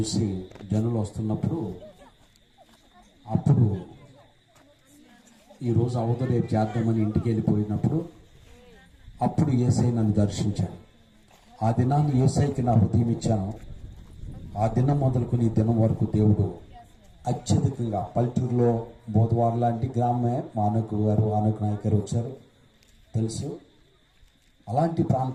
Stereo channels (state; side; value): identical; both; correlation 1.00